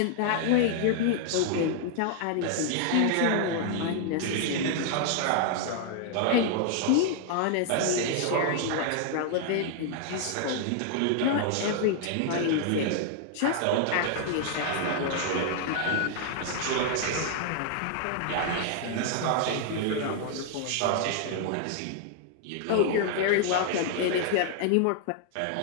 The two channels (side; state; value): both; different; correlation 0.00